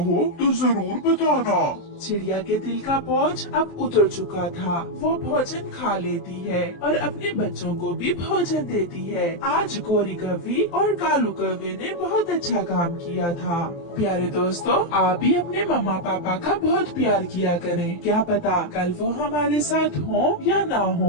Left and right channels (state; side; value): late; right; 23 ms